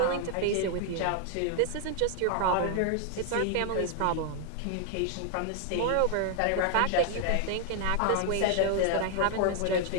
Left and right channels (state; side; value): different; both; correlation 0.00